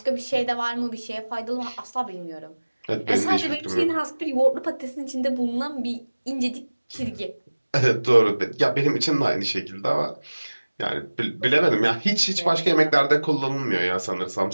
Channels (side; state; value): both; inverted; correlation -1.00